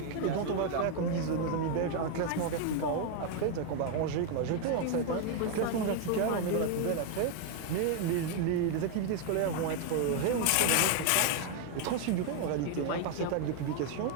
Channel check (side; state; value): both; different; correlation 0.00